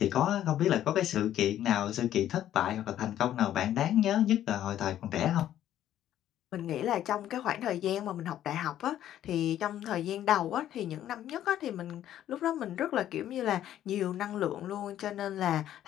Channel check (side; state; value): right; quieter; 11.7 dB